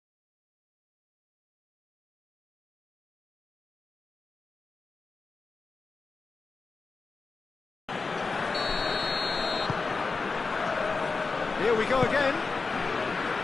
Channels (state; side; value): quieter; right; 4.2 dB